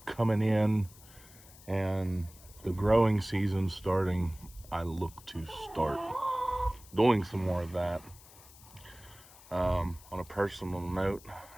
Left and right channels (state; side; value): noise; left; hiss, 22 dB below the sound